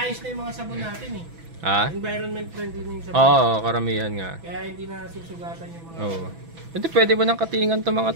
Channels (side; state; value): left; late; 6.0 ms